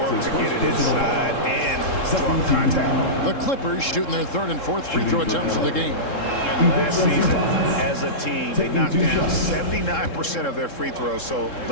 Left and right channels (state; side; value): late; right; 3.7 ms